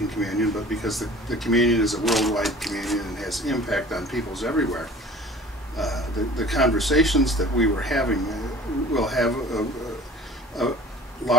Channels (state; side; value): normal; both; correlation 0.45